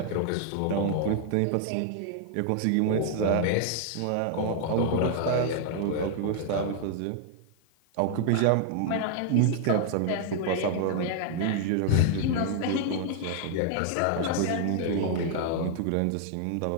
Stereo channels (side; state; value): both; different; correlation -0.01